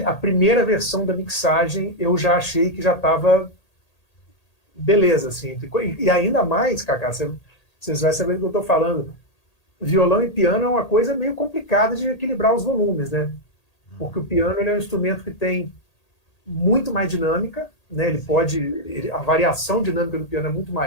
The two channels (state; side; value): late; right; 1.8 ms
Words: a primeira versão da mixagem eu já achei que já estava beleza, assim. E ainda mais, Cacá, vocês vão saber do que eu estou falando. Violão e piano é uma coisa meio complicada de equilibrar os volumes, né? Porque o piano ele é um instrumento que tem muito mais dinâmica, né? A variação dinâmica do piano é muito